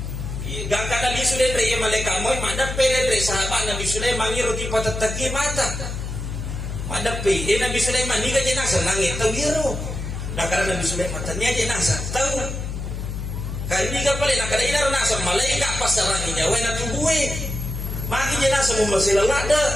Gang kada di sudah dari malaikat mau madap pele dari sahabat Nabi Sulaiman ngiru di patataki mata. Madap pele Nabi Sulaiman ni gaje nasa nangit tahu ngiru. Nah karena Nabi Sulaiman ternyata nasa tahu. Kali ni kapal nak kada ina nasa malaikat pasaranginya wena tubuhe. Magi jenasa mumasila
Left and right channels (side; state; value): left; noise; hum, 5 dB below the sound